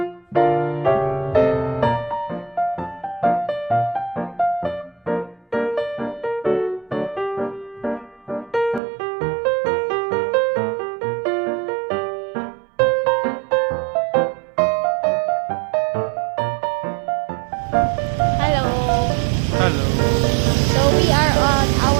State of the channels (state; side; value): drops out; left; at 8.8 s